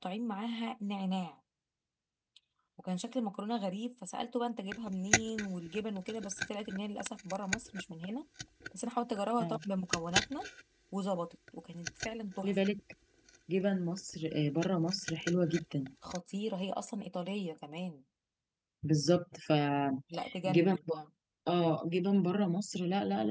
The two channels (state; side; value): identical; both; correlation 1.00